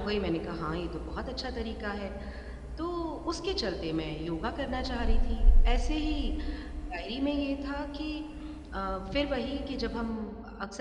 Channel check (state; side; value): identical; both; correlation 1.00